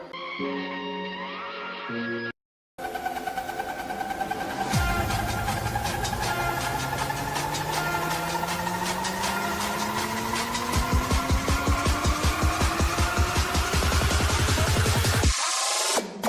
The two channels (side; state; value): both; identical; correlation 1.00